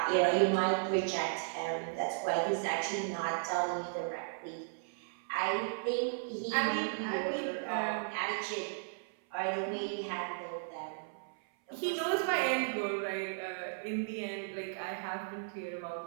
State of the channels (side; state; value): left; silent; 54 dB below the other